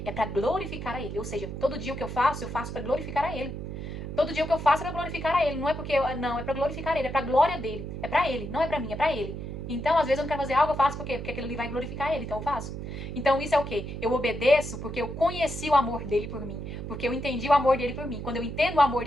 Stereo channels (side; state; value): right; noise; hum, 7 dB below the sound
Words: é para glorificar a ele. Ou seja, todo dia o que eu faço para glorificar a ele. Todo dia o que eu faço é para glorificar a ele. Não é porque não, é para glorificar ele, é para a glória dele. É para ele, não é para mim, é para ele. Então, às vezes eu não quero fazer algo, eu faço por quê? Porque aquilo ali vai glorificar ele, então eu faço. Então, isso é o quê? Eu obedeço porque eu conheci o amor dele por mim. Porque eu entendi o amor dele por mim. Quando eu entendo o amor